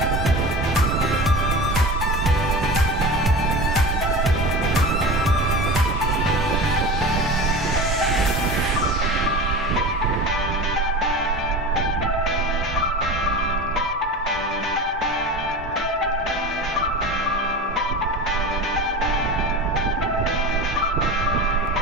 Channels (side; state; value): both; normal; correlation 0.31